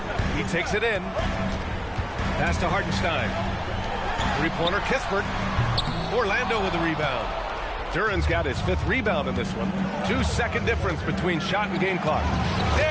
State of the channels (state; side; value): identical; both; correlation 1.00